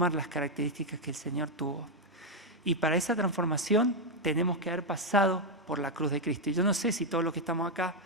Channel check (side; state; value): both; normal; correlation 0.02